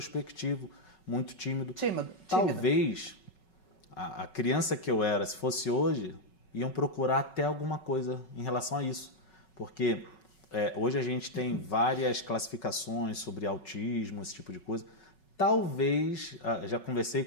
muito tímido. Talvez a criança que eu era, se fosse hoje, iam procurar até alguma coisa em relação a isso. Porque hoje a gente tem várias classificações sobre autismo, esse tipo de coisa. Talvez, já conversei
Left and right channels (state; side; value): late; right; 5.4 ms